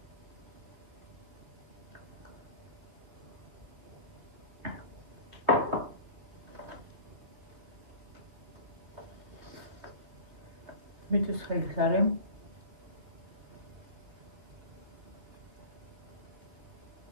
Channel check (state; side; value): late; left; 3.2 ms